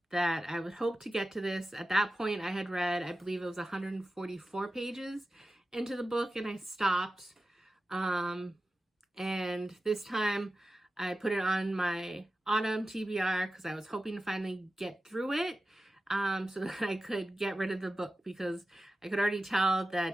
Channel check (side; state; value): both; normal; correlation 0.94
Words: that I would hope to get to this. At that point, I had read, I believe it was 144 pages into the book, and I stopped. And this time, I put it on my autumn TBR because I was hoping to finally get through it so that I could get rid of the book, because I could already tell that